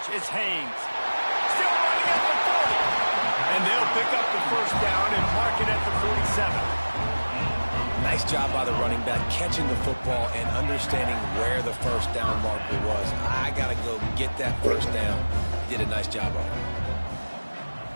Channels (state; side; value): inverted; both; correlation -1.00